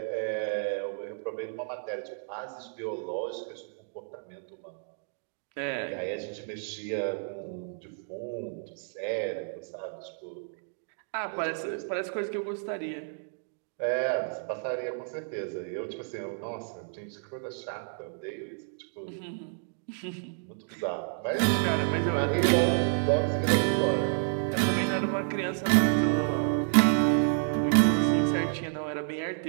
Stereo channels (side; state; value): left; silent; digital silence